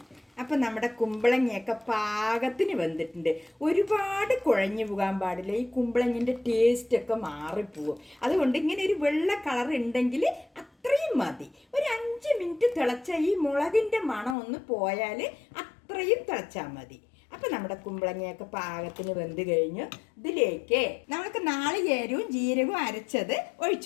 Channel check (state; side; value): drops out; right; at 14.4 s